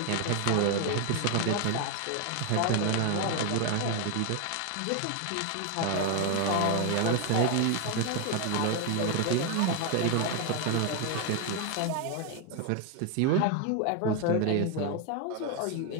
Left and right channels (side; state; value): both; different; correlation 0.01